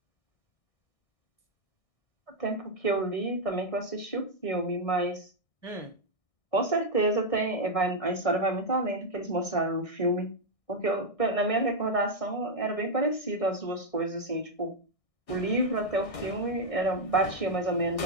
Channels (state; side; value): late; right; 1.6 ms